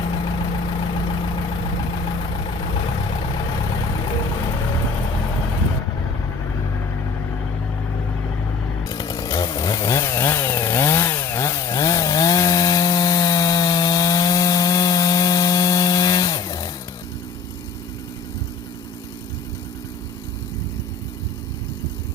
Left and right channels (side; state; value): right; quieter; 4.8 dB